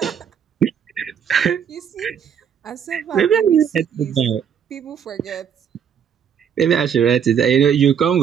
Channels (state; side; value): quieter; left; 8.0 dB